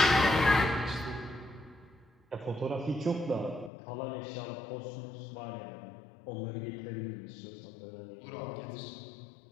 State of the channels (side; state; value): right; drops out; at 3.7 s